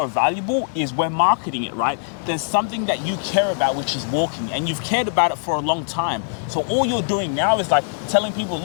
valuable is we're marketing it, right? There's something that you care about, which is walking, and you've cared about it for a long time. So all you're doing now is like telling people,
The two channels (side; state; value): right; silent; 63 dB below the other